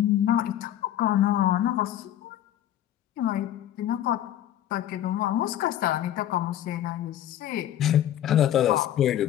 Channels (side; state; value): right; quieter; 11.8 dB